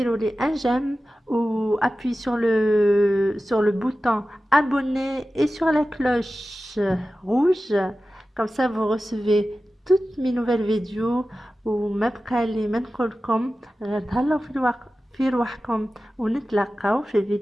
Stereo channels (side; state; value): both; normal; correlation 0.94